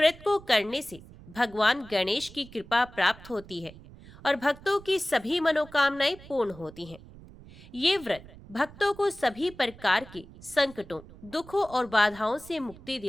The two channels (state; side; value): noise; right; rumble, 20 dB below the sound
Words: को करने से भगवान गणेश की कृपा प्राप्त होती है और भक्तों की सभी मनोकामनाएं पूर्ण होती हैं। ये व्रत भक्तों को सभी प्रकार के संकटों, दुखों और बाधाओं से मुक्ति